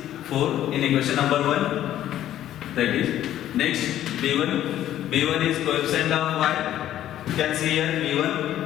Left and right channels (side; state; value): right; quieter; 12.2 dB